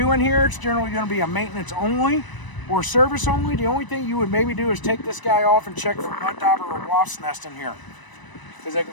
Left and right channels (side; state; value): right; late; 1.0 ms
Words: in here. It's generally going to be a maintenance only or service only. The only thing you would maybe do is take this guy off and check for mud dauber or wasp nest in here, because they can